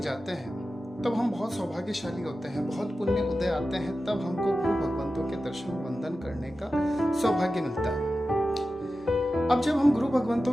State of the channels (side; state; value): both; normal; correlation 0.93